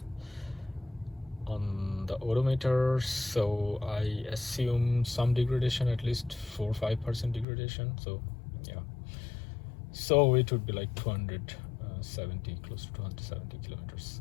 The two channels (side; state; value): right; drops out; at 7.5 s